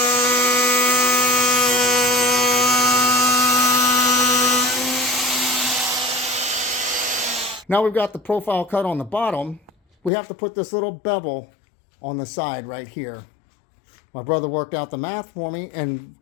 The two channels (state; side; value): drops out; right; at 10.1 s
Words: Now we've got the profile cut on the bottom. We have to put this little bevel on the side right here. My brother worked out the math for me,